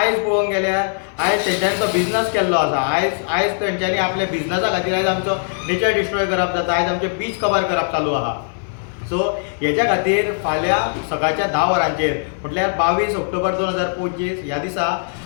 पळोवंक गेल्यार आयज तेंच्यांनी तो बिझनस केल्लो आसा। आयज तेंच्यांनी आपल्या बिझनसा खातीर आयज आमचो नेचर डिस्ट्रॉय करप जाता, आयज आमचे बीच कवर करप चालू आहा। सो हेच्या खातीर फाल्यां सकाळच्या 10 वरांचेर म्हटल्यार 22 ऑक्टोबर 2025 ह्या दिसा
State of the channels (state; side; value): silent; right; digital silence